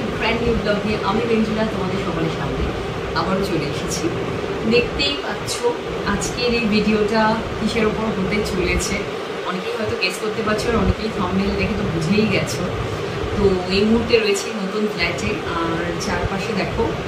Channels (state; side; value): identical; both; correlation 1.00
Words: ব্র্যান্ড নিউ ব্লগ নিয়ে আমি ভেঞ্জুলা তোমাদের সকলের সামনে আবারও চলে এসেছি। দেখতেই পাচ্ছ আজকের এই ভিডিওটা কিসের উপর হতে চলেছে। অনেকেই হয়তো গেস করতে পারছো আর অনেকেই থাম্বনেল দেখে তো বুঝেই গেছো। তো এই মুহূর্তে রয়েছে নতুন ফ্ল্যাটে আর চারপাশে দেখো